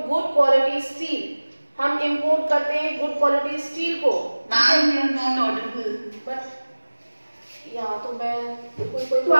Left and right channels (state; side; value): inverted; both; correlation -1.00